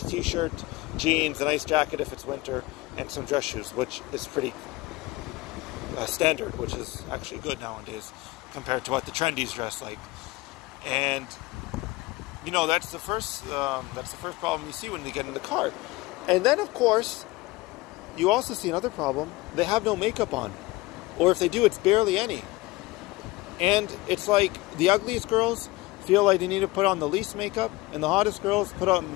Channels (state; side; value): quieter; right; 20.7 dB